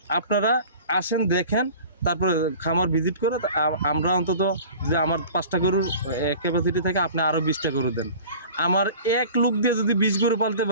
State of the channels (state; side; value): inverted; both; correlation -0.41